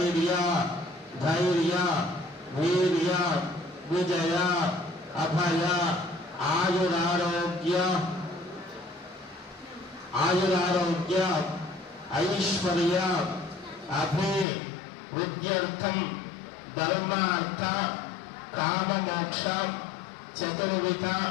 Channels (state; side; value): drops out; right; at 14.5 s